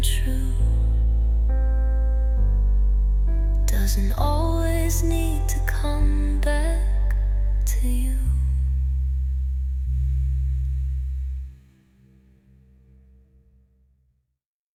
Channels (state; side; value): identical; both; correlation 1.00